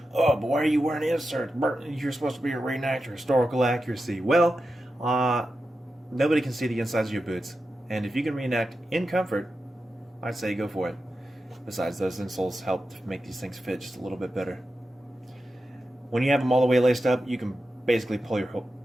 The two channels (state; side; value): normal; both; correlation 0.90